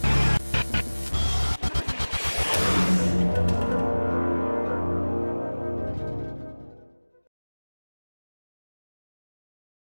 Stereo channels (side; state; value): both; inverted; correlation -1.00